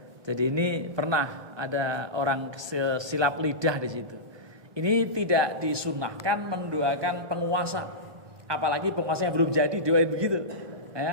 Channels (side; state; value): left; late; 1.2 ms